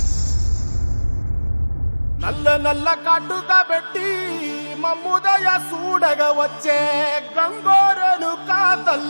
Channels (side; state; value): both; inverted; correlation -1.00